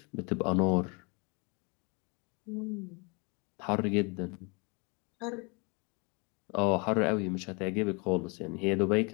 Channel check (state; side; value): quieter; right; 31.5 dB